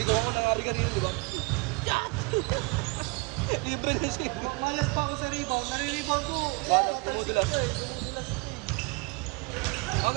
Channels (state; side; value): quieter; left; 27.8 dB